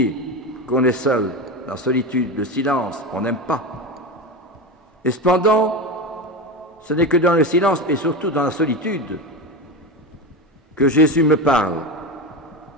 qu'on est seul, la solitude, le silence, on n'aime pas. Et cependant, ce n'est que dans le silence, et surtout dans la solitude, que Jésus me parle,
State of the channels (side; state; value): both; normal; correlation 0.20